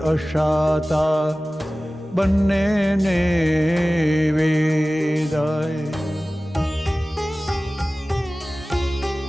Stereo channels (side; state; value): both; normal; correlation 0.97